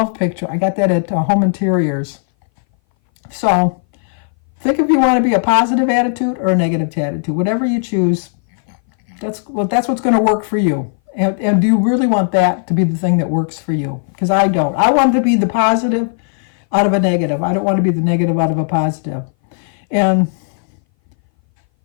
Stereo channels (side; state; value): right; silent; 60 dB below the other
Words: picture. I got that at Home Interiors. So think if you want to be a positive attitude or a negative attitude. Whatever you choose, that's what's going to work for you. And do you really want that to be the thing that works for you? Because I don't. I want to be the positive out of a negative. I don't want to be the negative out of a positive. And